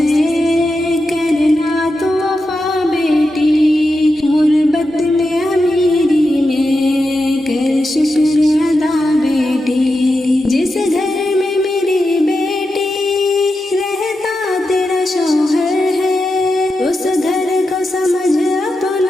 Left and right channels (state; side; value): normal; both; correlation 0.89